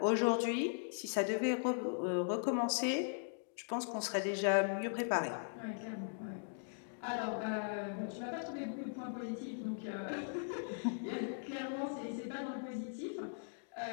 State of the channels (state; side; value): silent; right; digital silence